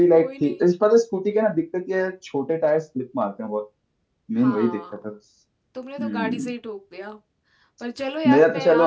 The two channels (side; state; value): both; identical; correlation 1.00